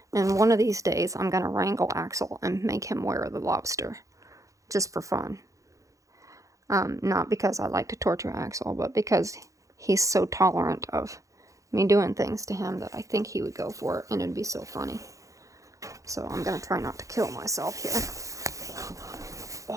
And one of these days, I'm gonna wrangle Axel and make him wear the lobster, just for fun. Not because I like to torture Axel, but because he's so tolerant of me doing things to him that I think he would go for it, and it'd be so funny. So I'm gonna try not to kill myself here.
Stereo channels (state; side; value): late; left; 0.16 ms